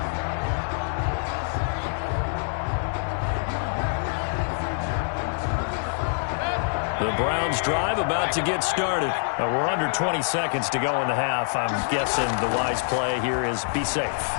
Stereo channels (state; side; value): silent; right; digital silence